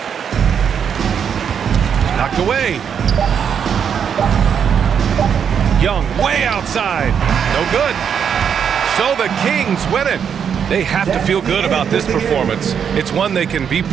Knocked away. Young way outside. No good. So the Kings win it. They have to feel good about this performance. It's one they can be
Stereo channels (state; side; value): quieter; left; 7.6 dB